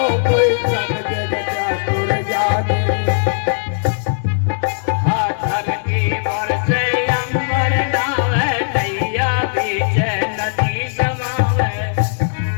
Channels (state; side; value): silent; right; 63 dB below the other